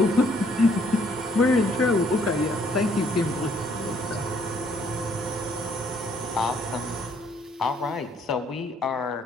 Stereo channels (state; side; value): normal; both; correlation 0.65